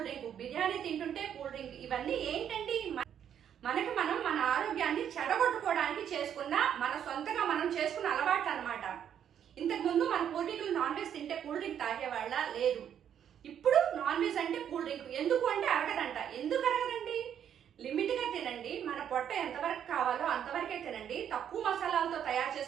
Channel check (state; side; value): quieter; left; 9.2 dB